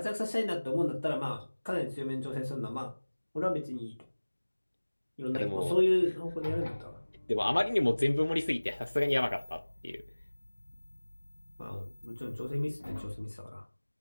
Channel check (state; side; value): inverted; both; correlation -1.00